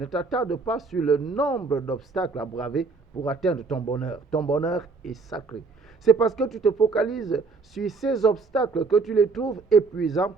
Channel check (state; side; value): quieter; left; 4.3 dB